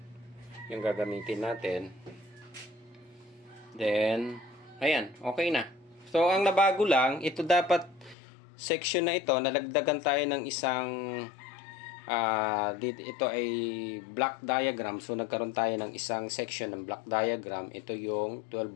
Yung gagamitin natin. Then, ayan. Okay na. So, ang nabago lang, ito dapat section na ito, nalagdagan tayo ng isang ito ay block diagram. So, nagkaroon tayo ng isang section ng block diagram. Ito yung 12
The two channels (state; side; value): drops out; right; at 8.2 s